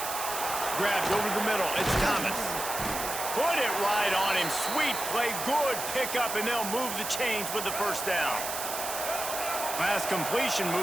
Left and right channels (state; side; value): noise; right; hiss, 5 dB below the sound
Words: Grabbed over the middle. It's Thomas. Put it right on him. Sweet play. Good pickup, and they'll move the chains with the first down. Pass completion,